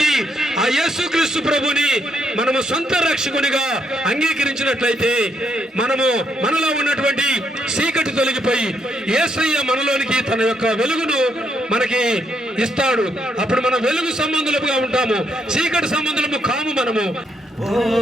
ఆ యేసుక్రీస్తు ప్రభుని మనము సొంత రక్షకునిగా అంగీకరించినట్లయితే మనలో ఉన్నటువంటి చీకటి తొలగిపోయి యేసయ్య మనలోనికి తన యొక్క వెలుగును మనకి ఇస్తాడు. అప్పుడు మనం వెలుగు సంబంధులుగా ఉంటాము, చీకటి సంబంధులము కాము మనము. ఓ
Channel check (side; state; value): both; normal; correlation 0.76